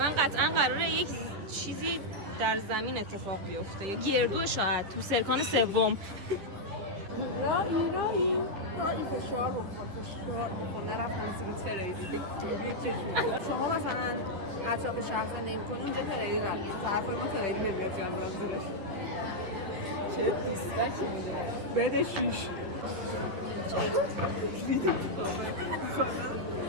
قطعا قراره یک چیزی در زمین اتفاق بیفته، یا گردو شاید تو سرکان سوم. رایی فشار بکن نرفتم زیر تریدی بگیری چشمی. شما مثلا اطراف شهر زندگی میکنی، اونجا تریدی رفت تو طرفای ما تریدی نمیاد جان برم زیرش. چه دیستکی میده بده 6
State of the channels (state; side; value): late; left; 10 ms